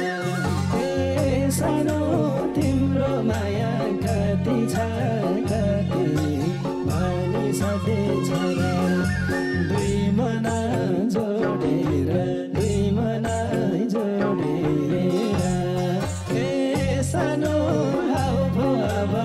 सानो तिम्रो माया कति छ कति भनी सधैँ छोरा दुई मन जोडेर दुई मन जोडेर सानो अब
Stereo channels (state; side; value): identical; both; correlation 1.00